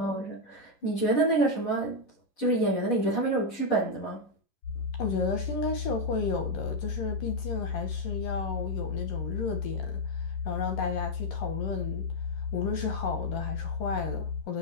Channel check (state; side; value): late; right; 11 ms